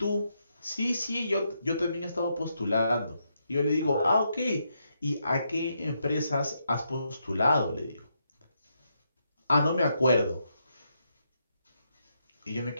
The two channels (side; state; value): both; inverted; correlation -0.80